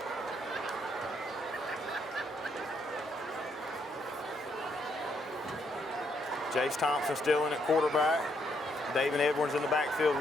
Jace Thompson still in at quarterback. David Edwards in the backfield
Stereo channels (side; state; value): both; normal; correlation 0.74